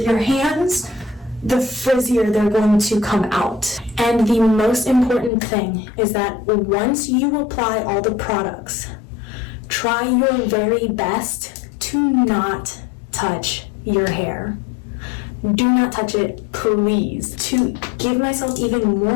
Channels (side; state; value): right; drops out; at 5.3 s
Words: your hands, the frizzier they're going to come out. And the most important thing is that once you apply all the products, try your very best to not touch your hair. Do not touch it, please. To give myself even